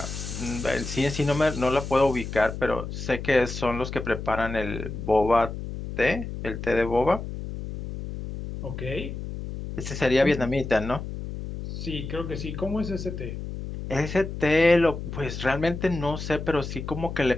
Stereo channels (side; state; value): left; noise; hum, 7 dB below the sound